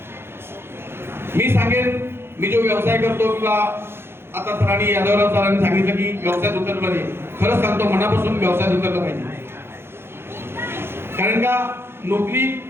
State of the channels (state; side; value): late; left; 0.11 ms